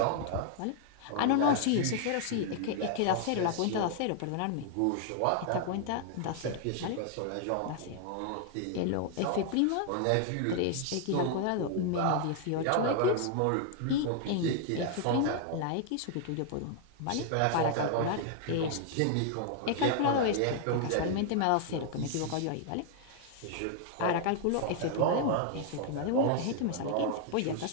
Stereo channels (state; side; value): different; both; correlation 0.00